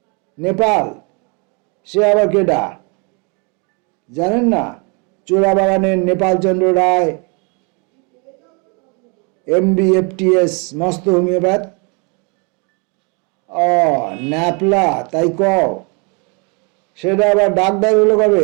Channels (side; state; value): left; quieter; 33.2 dB